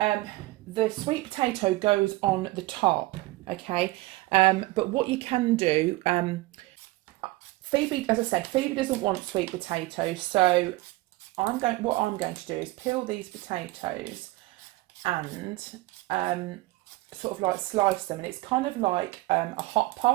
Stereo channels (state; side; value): quieter; left; 19.8 dB